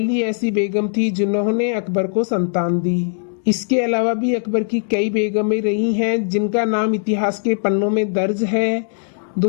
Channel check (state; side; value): silent; right; digital silence